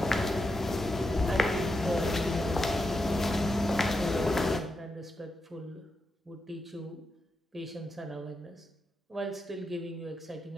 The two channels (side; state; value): both; normal; correlation 0.86